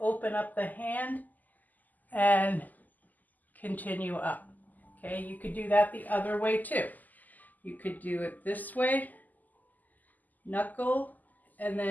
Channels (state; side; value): late; right; 0.082 ms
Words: open up the hand and continue up. Okay, you could do that the other way too. You could do it this way, knuckle, and